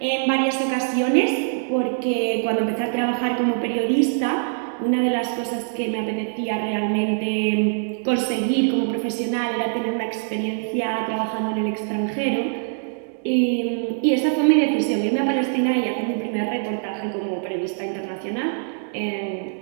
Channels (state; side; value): silent; left; digital silence